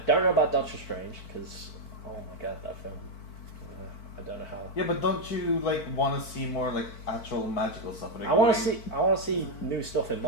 know about Doctor Strange because oh my god, that film. I don't know how. Yeah, but don't you want to see more actual magical stuff? I want to see new stuff in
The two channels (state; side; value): late; right; 4.5 ms